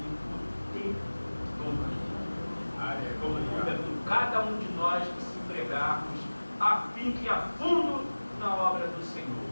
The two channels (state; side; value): inverted; both; correlation -1.00